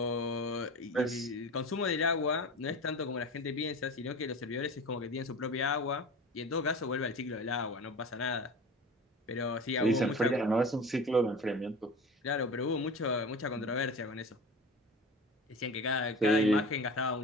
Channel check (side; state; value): both; normal; correlation 0.34